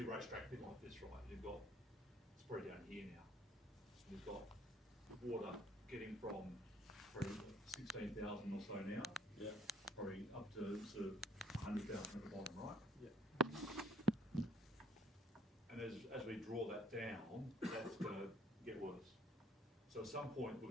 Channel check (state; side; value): normal; both; correlation 0.60